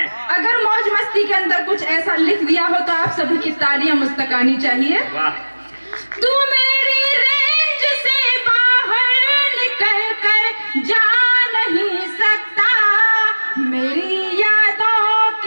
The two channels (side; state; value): both; inverted; correlation -1.00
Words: अगर मौज मस्ती के अंदर कुछ ऐसा लिख दिया हो तो आप सभी की तालियां मुस्तकानी चाहिए। तू मेरी रेंज से बाहर निकल कर जा नहीं सकता, मेरी यादों